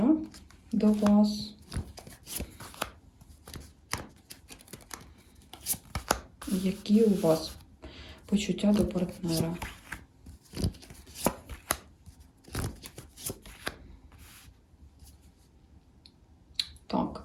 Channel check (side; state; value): both; identical; correlation 1.00